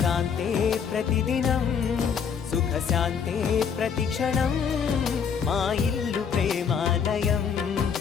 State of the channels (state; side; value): quieter; right; 6.8 dB